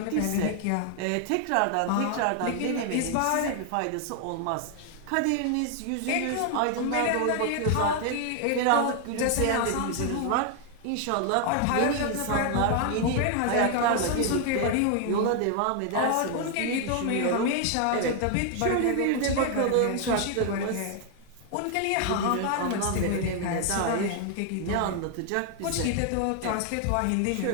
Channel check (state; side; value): different; both; correlation 0.00